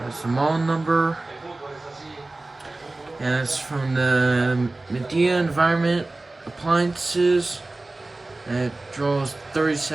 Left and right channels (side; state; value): left; quieter; 3.0 dB